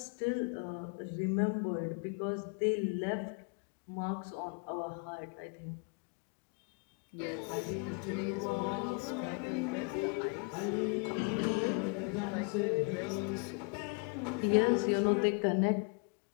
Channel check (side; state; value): right; quieter; 34.8 dB